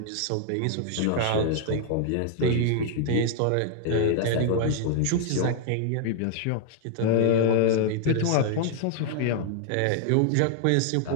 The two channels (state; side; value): different; both; correlation 0.00